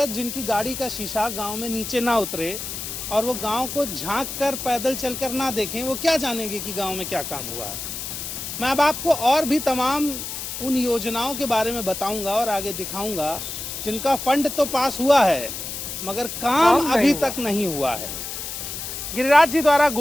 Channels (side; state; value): left; noise; hiss, 7 dB below the sound